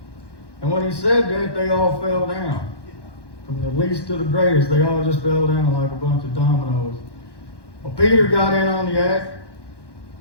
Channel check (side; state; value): right; late; 1.1 ms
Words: And when he said that, they all fell down. From the least to the greatest, they all just fell down like a bunch of dominoes. Well, Peter got in on the act,